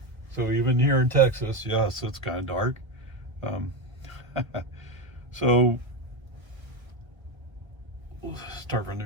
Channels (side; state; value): left; late; 1.1 ms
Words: So even here in Texas, yes, it's kind of dark. Um, so we'll start from the